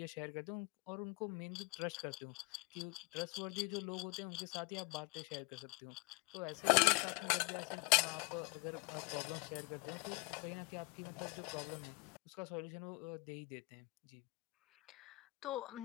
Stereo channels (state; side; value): quieter; right; 28.0 dB